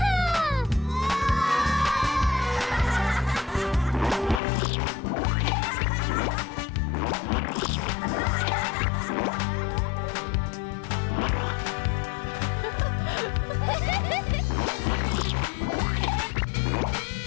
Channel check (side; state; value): right; drops out; at 4.4 s